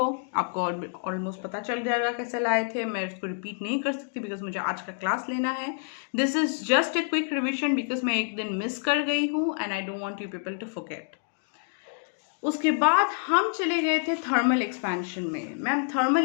आपको ऑलमोस्ट पता चल जाएगा कैसे लाए थे। मैं इसको रिपीट नहीं कर सकती बिकॉज मुझे आज का क्लास लेना है। This is just a quick revision because मैं एक दिन मिस कर गई हूँ and I don't want you people to forget. उसके बाद हम चले गए थे थर्मल एक्सपेंशन में। मैम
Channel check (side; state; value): right; silent; digital silence